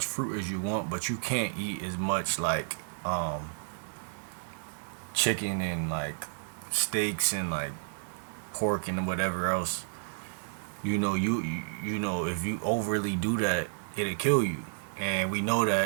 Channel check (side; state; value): left; silent; digital silence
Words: fruit as you want, but you can't eat as much like chicken and like steaks and like pork and whatever else. If you overly do that, it'll kill you. And we know